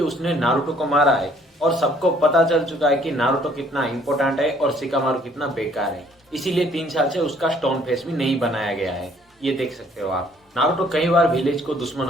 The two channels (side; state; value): both; normal; correlation 0.61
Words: उसने नारुतो को मारा है और सबको पता चल चुका है कि नारुतो कितना इंपॉर्टेंट है और शिकामारू कितना बेकार है। इसीलिए 3 साल से उसका स्टोन फेस भी नहीं बनाया गया है। ये देख सकते हो आप। नारुतो कई बार विलेज को